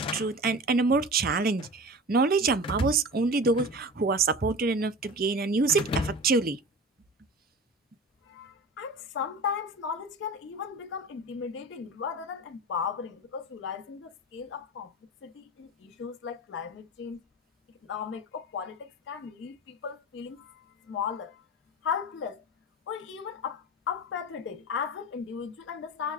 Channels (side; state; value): both; normal; correlation 0.34